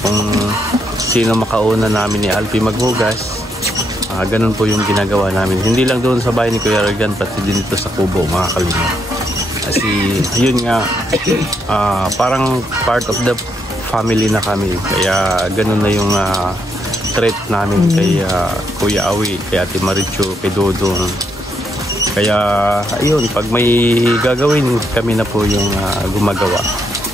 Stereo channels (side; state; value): both; normal; correlation 0.77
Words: sino makauna namin ni Alpi maghugas, ganun po yung ginagawa namin. Hindi lang doon sa bahay ni Kuya Regan, pati din dito sa kubo mga kalingap. Kasi yun nga, parang part of the family na kami, kaya ganun na yung treat namin kay Kuya Awi, kay Ate Marichu, kay Dodong. Kaya ayun, pag may gagawin, kami na po yung gumagawa.